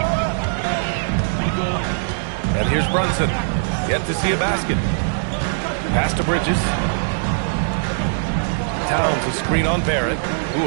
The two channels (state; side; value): silent; left; digital silence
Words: And here's Brunson. Yet to see a basket. Pass to Bridges. Towns a screen on Barrett.